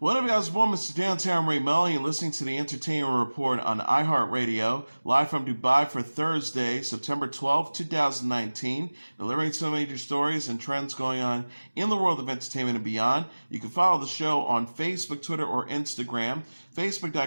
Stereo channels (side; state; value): both; inverted; correlation -1.00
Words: up, guys? Well, Mr. Downtown Ray Mully, and listening to the Entertainment Report on iHeartRadio, live from Dubai for Thursday, September 12th, 2019, delivering some major stories and trends going on in the world of entertainment and beyond. You can follow the show on Facebook, Twitter, or Instagram.